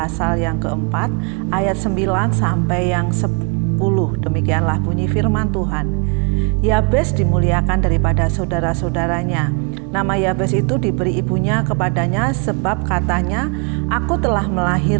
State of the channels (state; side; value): quieter; left; 35.2 dB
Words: yang keempat ayat 9 sampai yang 10. Demikianlah bunyi firman Tuhan. Yabes dimuliakan daripada saudara-saudaranya. Nama Yabes itu diberi ibunya kepadanya sebab katanya, "Aku telah